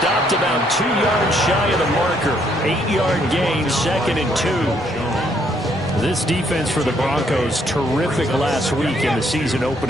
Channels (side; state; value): both; normal; correlation 0.69